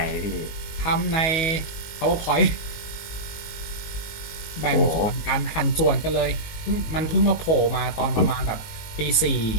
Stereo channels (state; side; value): late; right; 19 ms